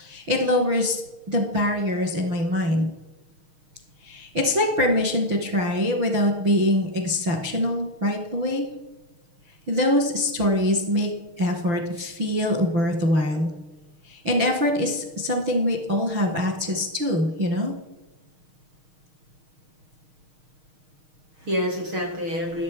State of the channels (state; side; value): late; left; 6.4 ms